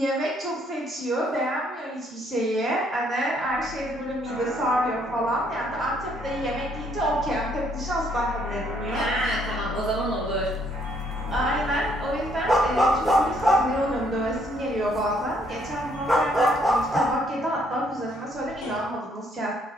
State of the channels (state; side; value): normal; both; correlation 0.68